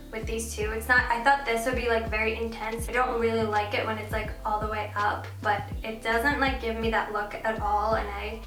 with these two. It's not, I thought this would be like very intense. I don't really like it when it's like all the way up, but it doesn't like give me that look at all, and I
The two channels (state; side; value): identical; both; correlation 1.00